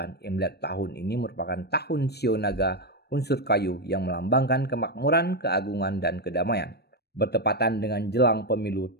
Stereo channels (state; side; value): late; right; 0.47 ms